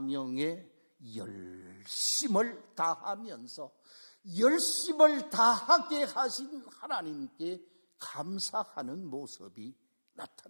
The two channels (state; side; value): inverted; both; correlation -1.00